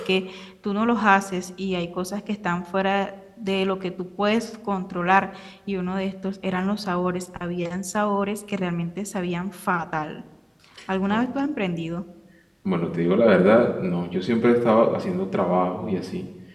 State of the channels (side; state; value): both; identical; correlation 1.00